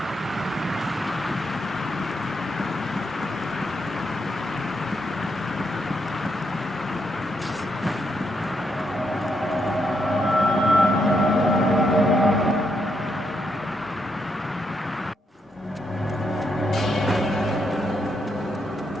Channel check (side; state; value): both; normal; correlation 0.79